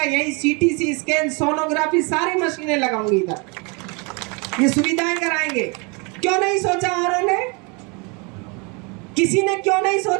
यही सीटीसी स्कैन, सोनोग्राफी, सारी मशीनें लगाऊंगी इधर, ये सुविधाएं कराएंगे। क्यों नहीं सोचा औरों ने? किसी ने क्यों नहीं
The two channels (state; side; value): quieter; left; 30.9 dB